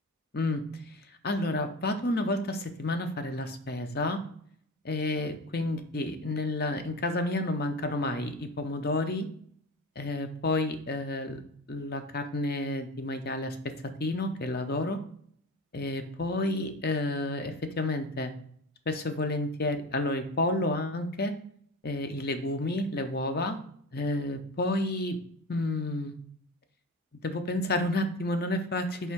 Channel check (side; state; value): both; normal; correlation 0.30